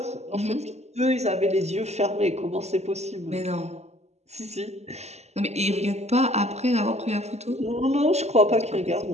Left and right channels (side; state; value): left; late; 0.32 ms